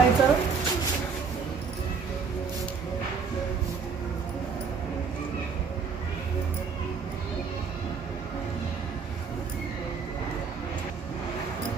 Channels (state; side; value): quieter; left; 5.6 dB